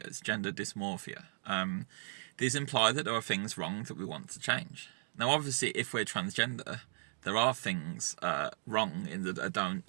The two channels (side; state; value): left; silent; digital silence